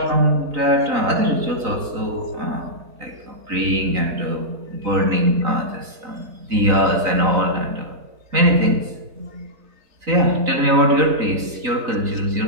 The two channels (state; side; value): late; left; 4.0 ms